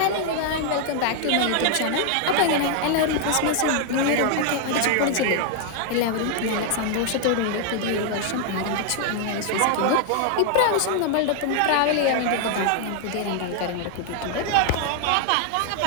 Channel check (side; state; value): both; different; correlation 0.00